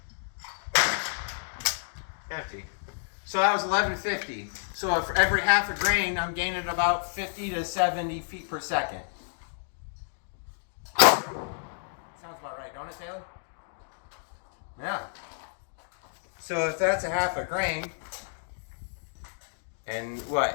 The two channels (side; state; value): right; silent; digital silence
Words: Empty. So that was 1150. So for every half a grain, I'm gaining about 50 to 70 feet per second. Sounds about right, don't it, Taylor? Yeah. So if that's a half a grain, and